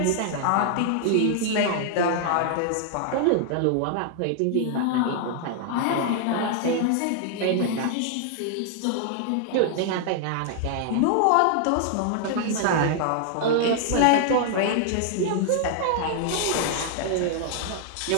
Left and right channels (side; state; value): both; different; correlation 0.00